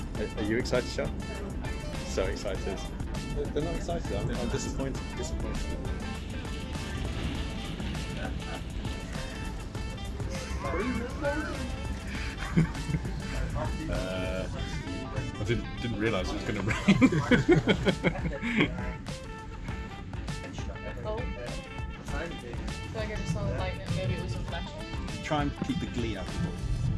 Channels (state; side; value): identical; both; correlation 1.00